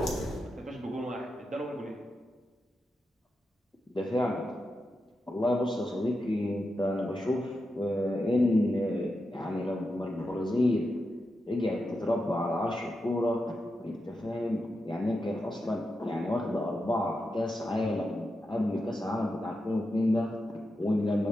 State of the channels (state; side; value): normal; both; correlation 0.88